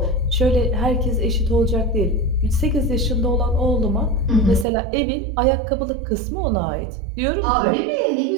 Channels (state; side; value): drops out; left; at 4.7 s